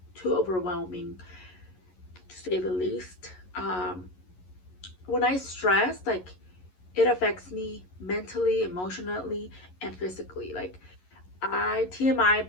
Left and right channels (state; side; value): late; right; 11 ms